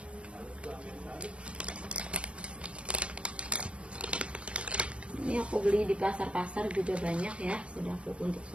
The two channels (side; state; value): left; late; 0.059 ms